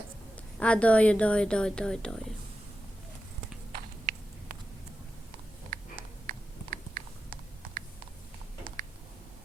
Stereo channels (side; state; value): both; normal; correlation 0.91